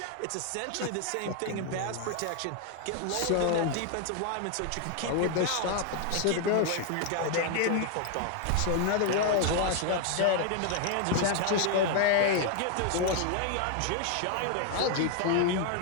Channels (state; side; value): different; both; correlation 0.00